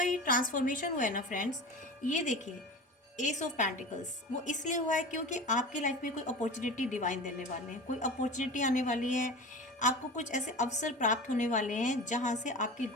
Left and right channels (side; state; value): both; normal; correlation 0.33